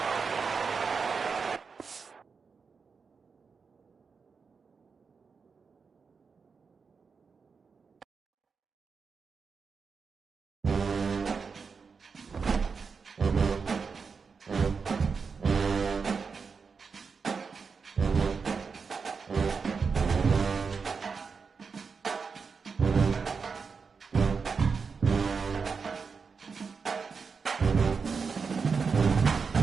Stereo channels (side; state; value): left; quieter; 5.3 dB